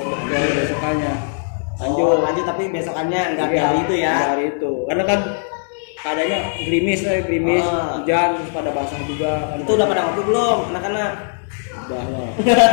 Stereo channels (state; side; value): silent; right; digital silence